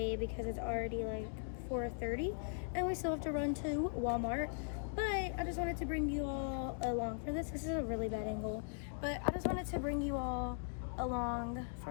because it's already like 4:30 and we still have to run to Walmart. But I just wanted to bring you all along for this. This is a really bad angle, but I just wanted to bring you all along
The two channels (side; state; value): right; silent; digital silence